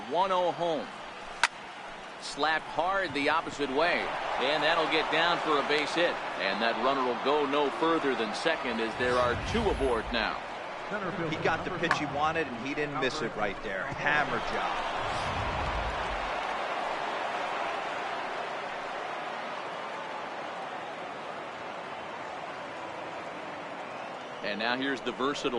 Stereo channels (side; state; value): both; identical; correlation 1.00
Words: 1-0 home. Slapped hard the opposite way, and that'll get down for a base hit, and that runner will go no further than second as there are 2 aboard now. He got the pitch he wanted, and he didn't miss it right there. Hammer job. And now here's the